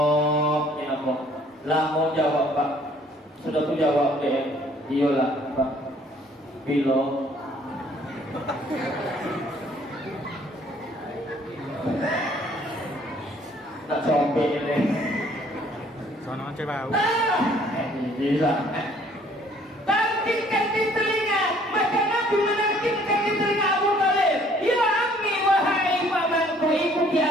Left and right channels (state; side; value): normal; both; correlation 0.59